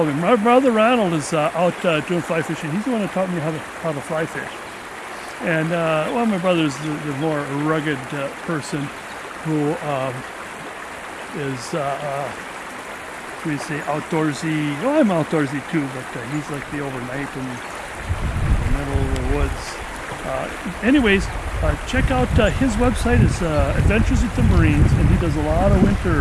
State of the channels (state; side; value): identical; both; correlation 1.00